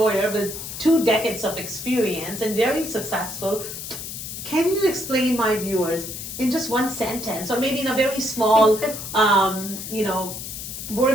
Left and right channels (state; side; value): noise; left; hiss, 8 dB below the sound